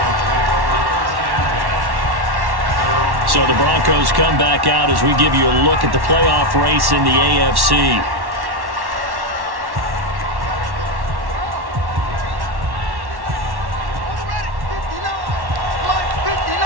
So the Broncos come back out as we give you a look at the playoff race in the AFC.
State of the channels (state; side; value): late; left; 1.1 ms